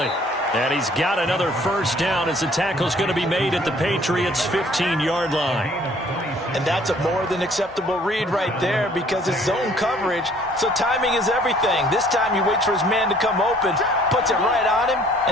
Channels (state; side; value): normal; both; correlation 0.57